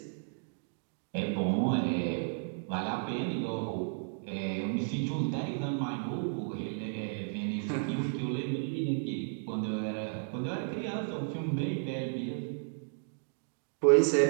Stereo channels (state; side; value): silent; left; digital silence